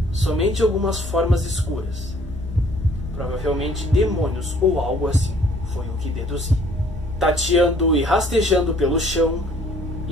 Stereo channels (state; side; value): normal; both; correlation 0.59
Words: somente algumas formas escuras. Provavelmente demônios ou algo assim, foi o que deduzi. Tateando e rastejando pelo chão